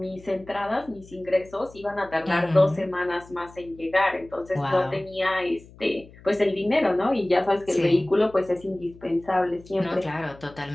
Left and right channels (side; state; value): left; noise; hum, 22 dB below the sound